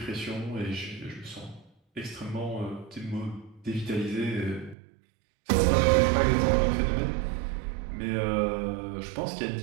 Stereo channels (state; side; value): drops out; left; at 4.8 s